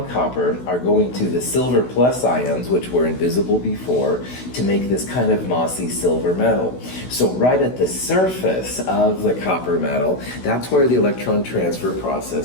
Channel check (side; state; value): right; late; 16 ms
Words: copper are going to the silver plus ions, which were invisible before, to make this kind of mossy silver metal. So right at the surface of the copper metal, that's where the electron transfer